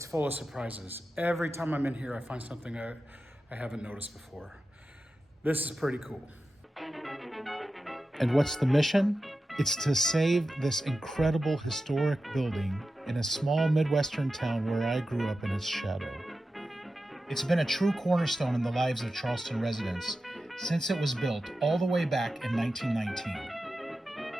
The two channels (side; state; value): both; normal; correlation 0.92